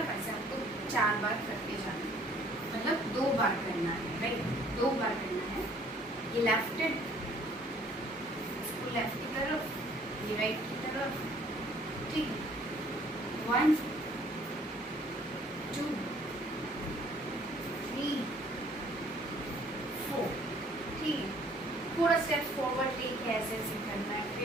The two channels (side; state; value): both; normal; correlation 0.58